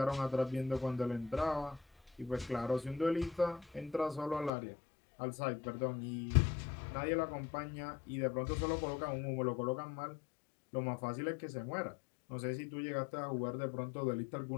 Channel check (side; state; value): right; drops out; at 4.5 s